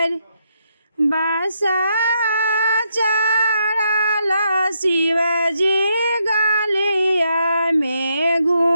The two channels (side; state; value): both; inverted; correlation -0.78